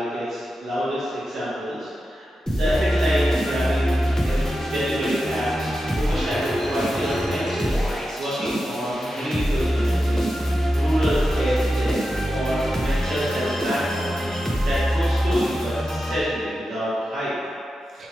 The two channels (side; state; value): both; normal; correlation 0.91